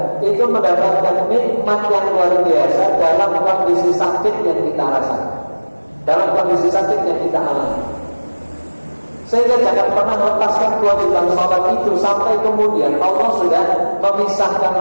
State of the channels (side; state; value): both; inverted; correlation -1.00